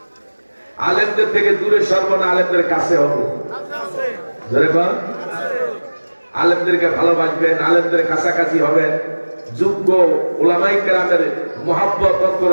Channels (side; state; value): both; inverted; correlation -1.00